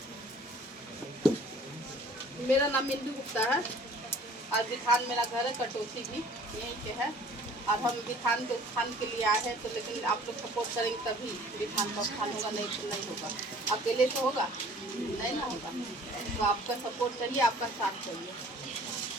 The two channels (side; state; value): both; normal; correlation 0.51